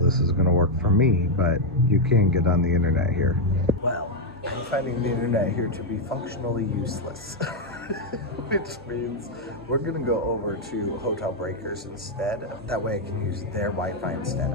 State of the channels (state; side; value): normal; both; correlation 0.01